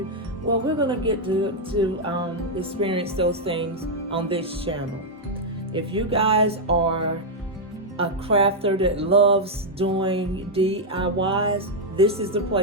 Well, we're going to get to experience those things on this channel. If you guys are a crafter that loves doing DIYs, this is the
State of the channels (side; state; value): both; normal; correlation -0.02